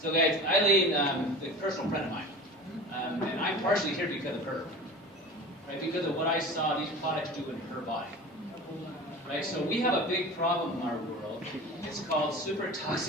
So guys, Eileen, a personal friend of mine. And I'm partially here because of her. Right? Because of what I saw these products do in her body. Right? So we have a big problem in our world. It's called super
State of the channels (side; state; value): both; normal; correlation 0.36